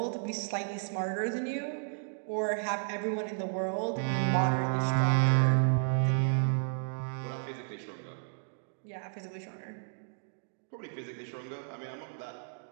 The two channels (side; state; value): left; silent; digital silence